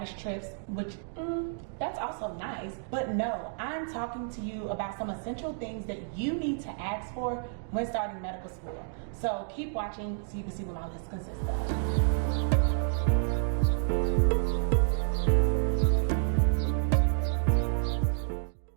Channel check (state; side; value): silent; left; digital silence